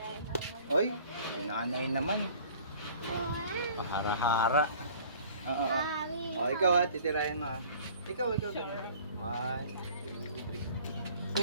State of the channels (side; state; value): both; inverted; correlation -0.49